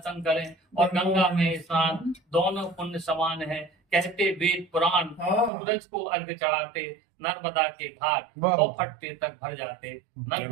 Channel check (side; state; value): left; drops out; at 5.5 s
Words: करें और गंगा में स्नान, दोनों पुण्य समान है कहते वेद पुराण, सूरज को अर्घ चढ़ाते नर्मदा के घाट, और फटते तक भर जाते